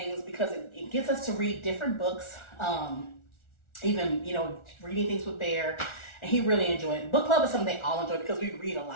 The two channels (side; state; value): right; late; 1.4 ms